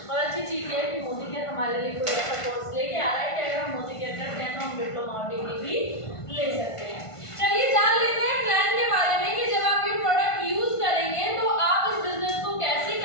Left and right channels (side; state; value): right; late; 1.5 ms